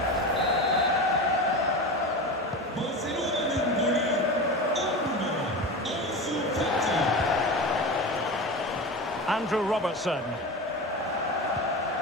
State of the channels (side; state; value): both; normal; correlation 0.26